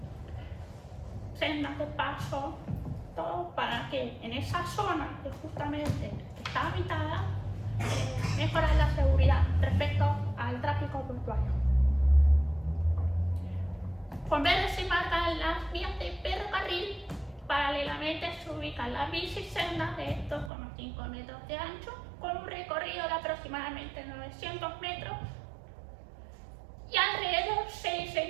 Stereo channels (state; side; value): drops out; left; at 20.5 s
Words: sendas esa zona que justamente está habitada, mejorar la seguridad respecto al tráfico portuario. Con verde se marcan las vías de ferrocarril, paralelamente se ubican las bicisendas de 2,5 metros de ancho, con un recorrido de aproximadamente 900 metros, y alrededor se